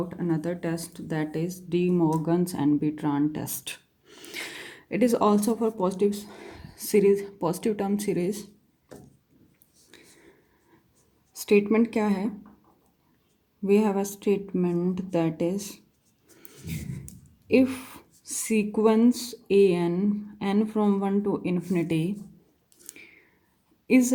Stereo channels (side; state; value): both; identical; correlation 1.00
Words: another test, that is De Morgan's and Bertrand test. It is also for positive term series. Statement क्या है? We have a statement that is, if sequence n from 1 to infinity is